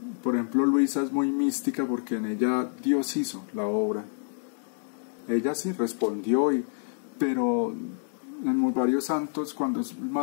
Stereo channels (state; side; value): silent; right; digital silence